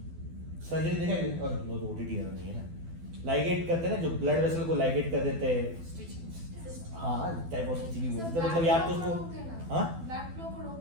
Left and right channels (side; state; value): left; late; 12 ms